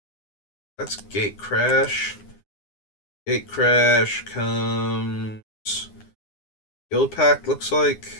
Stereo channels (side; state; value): right; late; 9.7 ms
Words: That's Gate Crash. Gate Crash comes Guild Pact, looks like.